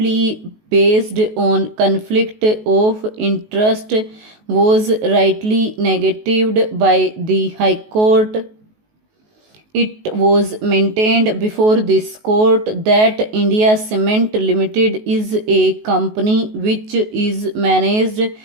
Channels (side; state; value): left; late; 19 ms